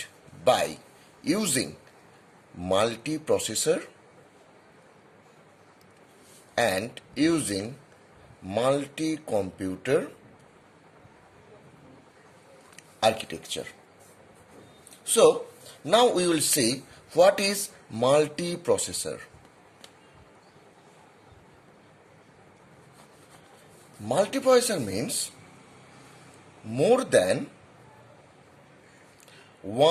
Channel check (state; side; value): identical; both; correlation 1.00